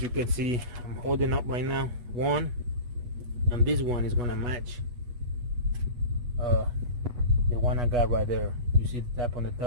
you can see I'm holding up right now one, and this one is gonna match the one I got right there. You see the tap on the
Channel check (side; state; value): left; late; 8.2 ms